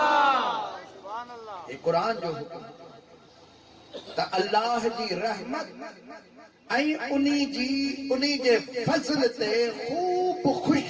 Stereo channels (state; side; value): identical; both; correlation 1.00